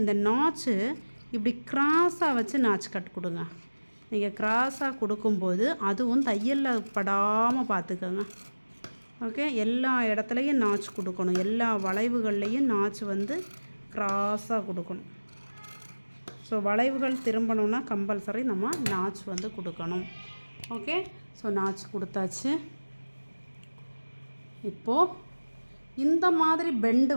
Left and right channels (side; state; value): both; inverted; correlation -1.00